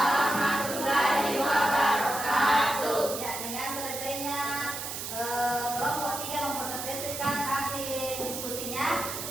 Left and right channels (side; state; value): right; noise; hiss, 6 dB below the sound